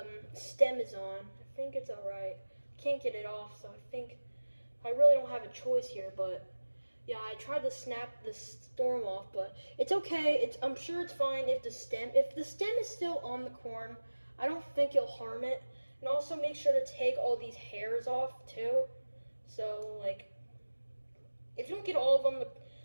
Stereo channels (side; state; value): both; inverted; correlation -1.00